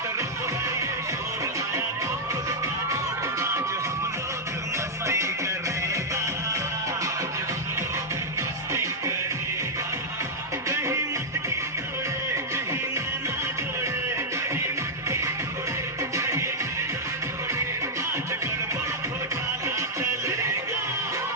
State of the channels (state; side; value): normal; both; correlation -0.05